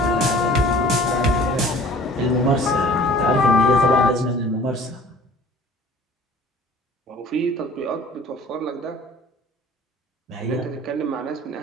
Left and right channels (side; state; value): both; normal; correlation 0.48